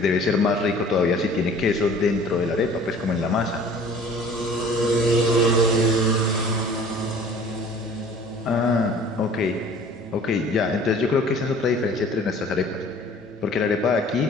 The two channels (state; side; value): normal; both; correlation 0.48